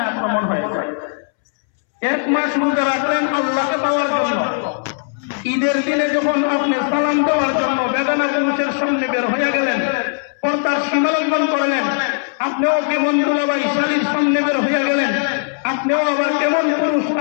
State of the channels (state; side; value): silent; right; 67 dB below the other